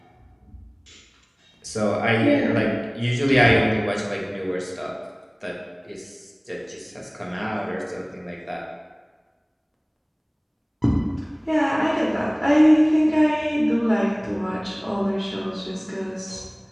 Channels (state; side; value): identical; both; correlation 1.00